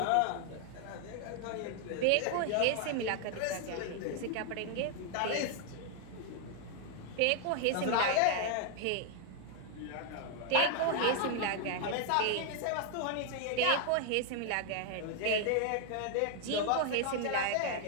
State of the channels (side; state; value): both; different; correlation 0.00